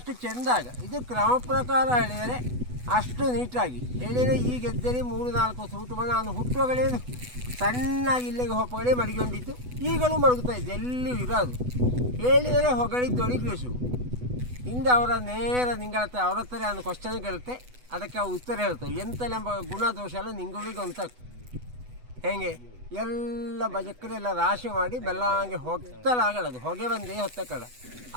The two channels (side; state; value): left; late; 8.1 ms